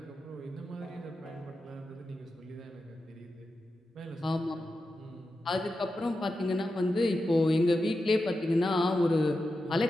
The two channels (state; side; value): normal; both; correlation 0.90